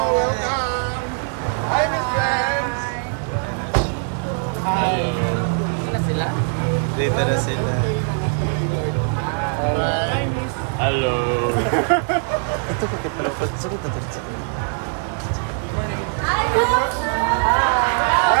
Hi, Miss friends. Ano sila? dito na sila. Hello.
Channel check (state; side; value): silent; left; 59 dB below the other